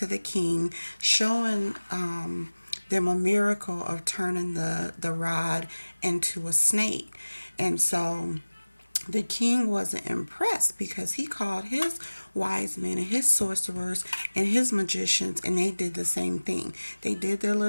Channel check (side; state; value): both; inverted; correlation -1.00